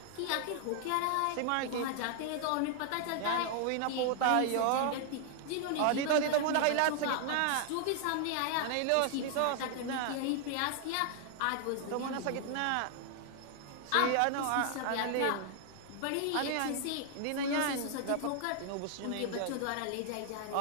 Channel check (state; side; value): different; both; correlation 0.00